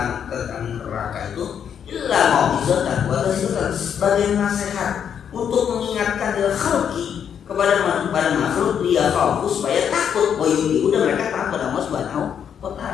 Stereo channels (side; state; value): right; quieter; 8.2 dB